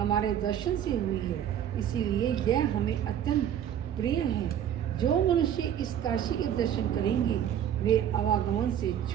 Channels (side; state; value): left; quieter; 9.9 dB